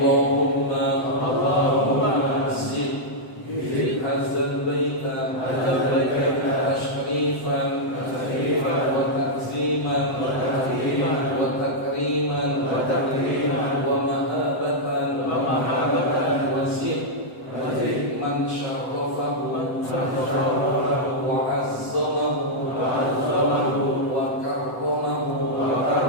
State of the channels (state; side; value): late; right; 7.8 ms